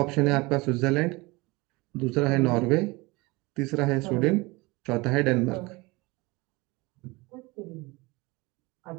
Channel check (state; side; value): quieter; left; 23.8 dB